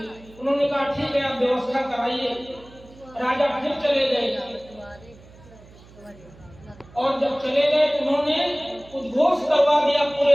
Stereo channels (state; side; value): noise; right; hum, 23 dB below the sound